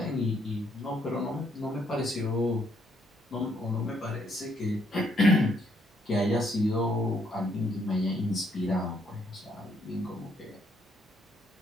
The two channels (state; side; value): normal; both; correlation 0.71